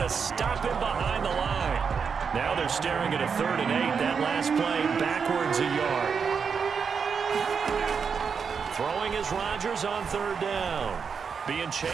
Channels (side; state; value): left; quieter; 6.1 dB